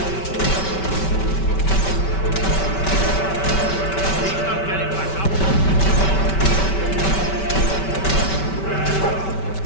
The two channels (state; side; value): late; right; 5.2 ms